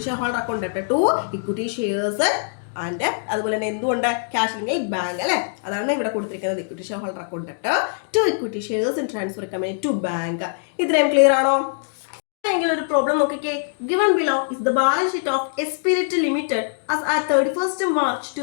share holder account ഡെപ്റ്റ് to equity shares and അതുപോലെ തന്നെ എന്തുകൊണ്ട് ക്യാഷ് അല്ലെങ്കിൽ ബാങ്ക് അല്ലെ. അതാണ് ഇവിടെ കൊടുത്തിരിക്കുന്നത് equity share holder account ഡെപ്റ്റ് to equity shares in transfer company to bank. ഇത്രയും ക്ലിയർ ആണോ? എങ്കിൽ ഒരു പ്രോബ്ലം നോക്കിക്കേ. Given below is the balance sheet of Esprit limited as at 31st March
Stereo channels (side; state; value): right; silent; digital silence